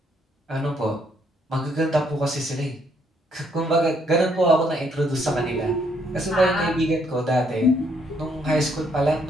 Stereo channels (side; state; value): both; normal; correlation 0.70